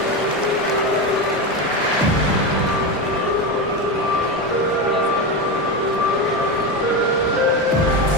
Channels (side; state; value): both; normal; correlation 0.16